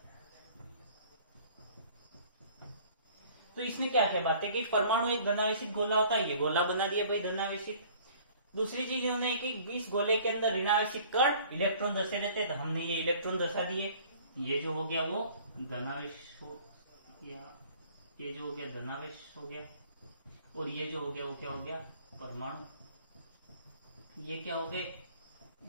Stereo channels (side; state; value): both; inverted; correlation -0.51